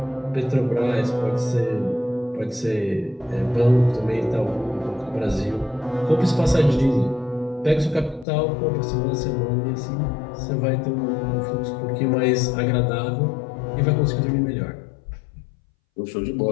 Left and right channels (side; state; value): right; drops out; at 8.2 s